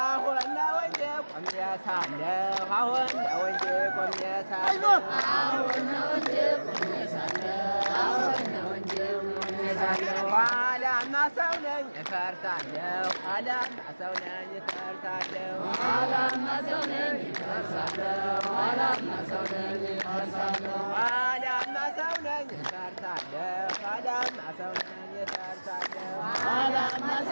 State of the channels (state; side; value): inverted; both; correlation -1.00